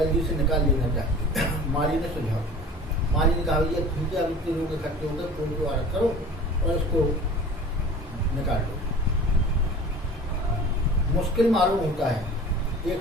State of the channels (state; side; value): normal; both; correlation 0.42